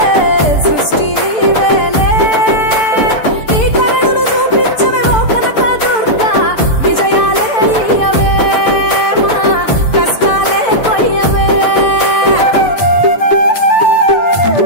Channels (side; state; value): right; late; 6.7 ms